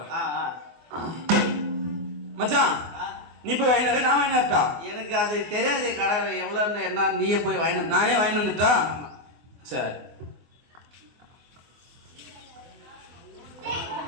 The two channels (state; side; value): late; left; 24 ms